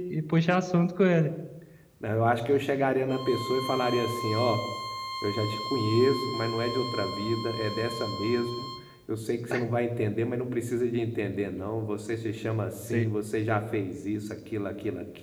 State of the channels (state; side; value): identical; both; correlation 1.00